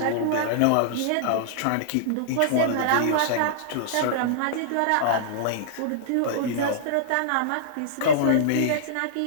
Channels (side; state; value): both; different; correlation -0.02